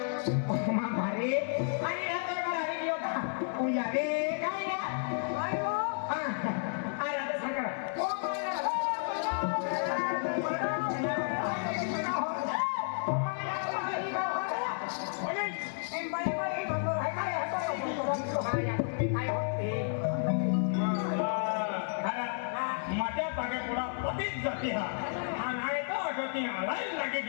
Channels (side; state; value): right; silent; 56 dB below the other